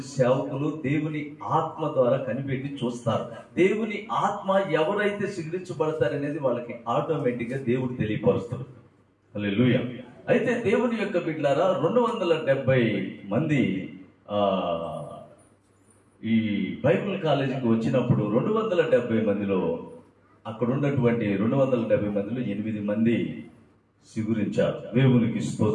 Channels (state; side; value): identical; both; correlation 1.00